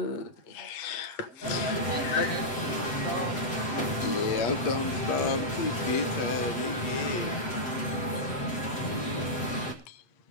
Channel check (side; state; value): right; late; 7.8 ms